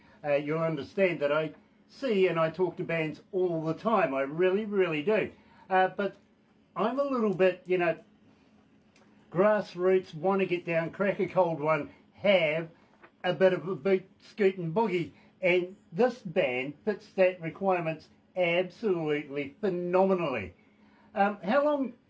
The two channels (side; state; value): both; identical; correlation 1.00